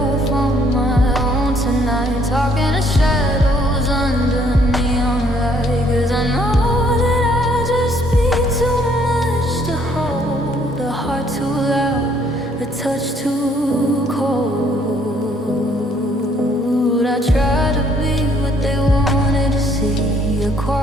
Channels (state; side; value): normal; both; correlation 0.65